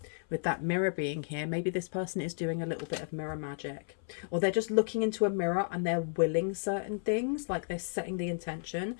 with that mirror being here, maybe this person is doing a little bit of mirror magic, or they're just looking into a mirror and they're willing certain things, like they're setting the intention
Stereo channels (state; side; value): silent; right; 56 dB below the other